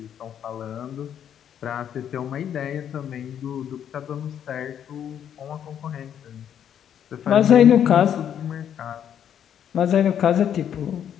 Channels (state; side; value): quieter; right; 9.3 dB